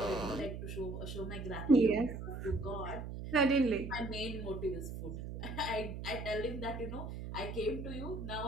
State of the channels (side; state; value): right; noise; hum, 7 dB below the sound